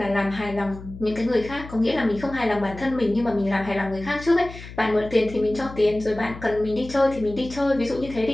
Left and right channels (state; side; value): noise; left; hum, 14 dB below the sound